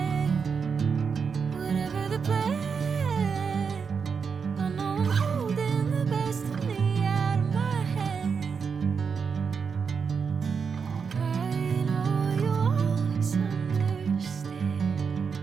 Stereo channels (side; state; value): left; quieter; 5.9 dB